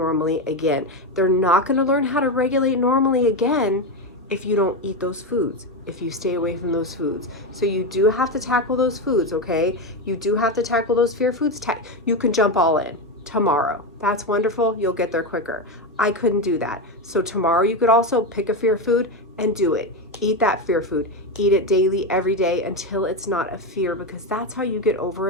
again. They're not going to learn how to regulate normally again if you don't eat those foods, if you stay away from those foods. So you do have to tackle those foods, okay? You do have to tackle those fear foods. You can jump all in tomorrow. That's wonderful. You'll get there quicker. I couldn't do that. So tomorrow you could also pick a fear food and do it. Eat that fear food. Eat it daily, every day, until it's not a fear, because that's how you get over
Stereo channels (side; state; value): both; normal; correlation 0.12